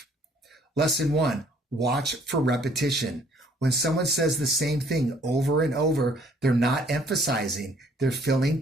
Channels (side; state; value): both; normal; correlation 0.61